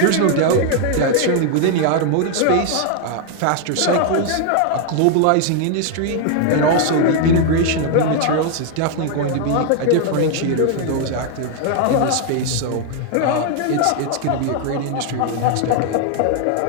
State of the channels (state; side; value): different; both; correlation 0.00